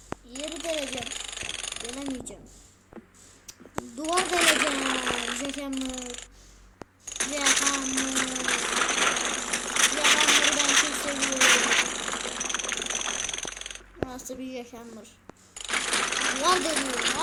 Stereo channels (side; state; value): both; identical; correlation 1.00